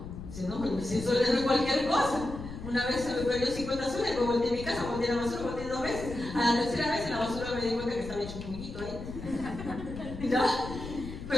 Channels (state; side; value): noise; left; rumble, 10 dB below the sound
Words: Dice, no, pero 100 soles no es cualquier cosa. Una vez se me perdió 50 soles, luego volteé a mi casa, volteé a la basura, volteé 2 veces. A la tercera vez en la basura me di cuenta que estaba hecho un poquito ahí. ¿Ya?